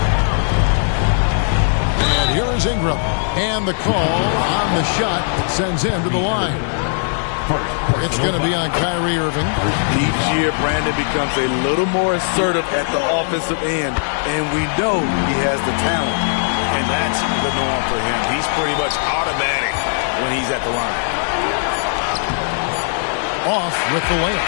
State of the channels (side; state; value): right; silent; 60 dB below the other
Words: And here is Ingram. And the call on the shot sends him to the line. It's going to be on Kyrie Irving. Each year, Brandon becomes a little more assertive at the offensive end. And we know he has the talent. And that's the norm for him. He's pretty much automatic when he's at the line. Off with the layup.